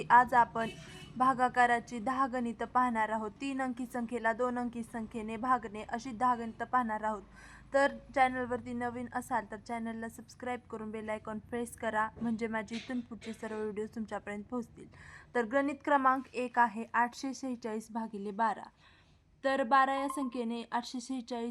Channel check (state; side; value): identical; both; correlation 1.00